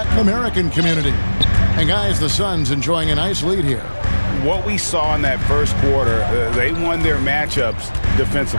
American community. And guys, the Suns enjoying a nice lead here. What we saw in that first quarter, they won their matchups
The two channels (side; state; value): both; inverted; correlation -1.00